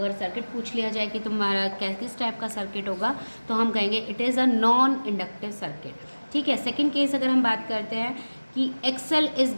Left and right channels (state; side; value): inverted; both; correlation -1.00